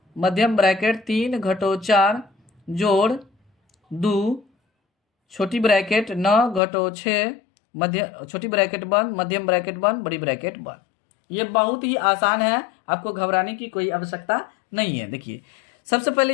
मध्यम ब्रैकेट 3 घटो 4 जोड़ 2 छोटी ब्रैकेट 9 घटो 6 छोटी ब्रैकेट बंद, मध्यम ब्रैकेट बंद, बड़ी ब्रैकेट बंद। ये बहुत ही आसान है, आपको घबराने की कोई आवश्यकता नहीं है। देखिए सबसे पहले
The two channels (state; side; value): drops out; right; at 6.6 s